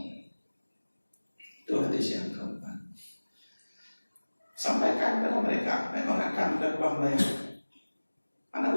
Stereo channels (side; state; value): both; inverted; correlation -1.00